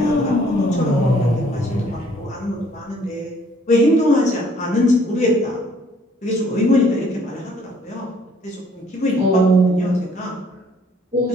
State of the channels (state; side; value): normal; both; correlation 0.61